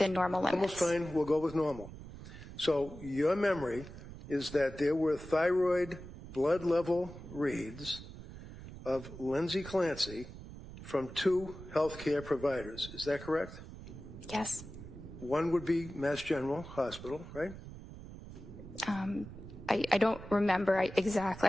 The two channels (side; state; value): right; noise; rumble, 13 dB below the sound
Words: normal limits. Almost fine. We'll go with normal. So your memory is that there were thyroid blood level reads of Lindsay Clancy from 2 healthcare providers. Is that correct? Yes. One would be Mass General Hospital, right? I don't remember